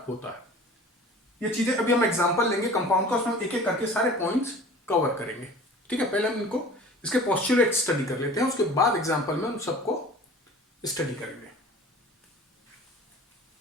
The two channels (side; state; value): both; normal; correlation 0.43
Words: होता है। ये चीजें अभी हम एग्जांपल लेंगे कंपाउंड का, उसमें एक एक करके सारे पॉइंट्स कवर करेंगे। ठीक है, पहले हम इनको इसके पोस्टुलेट स्टडी कर लेते हैं, उसके बाद एग्जांपल में हम सबको स्टडी करेंगे।